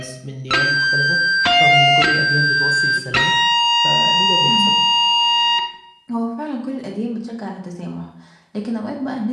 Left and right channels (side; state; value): both; identical; correlation 1.00